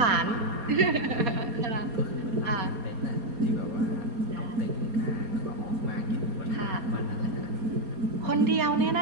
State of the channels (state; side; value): late; left; 4.2 ms